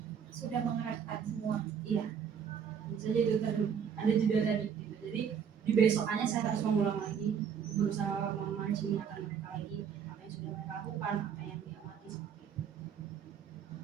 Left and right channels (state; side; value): quieter; left; 7.5 dB